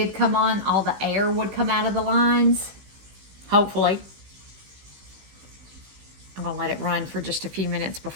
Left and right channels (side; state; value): left; late; 16 ms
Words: come on, all the air would come out of the lines, hopefully. I'm gonna let it run for just a few minutes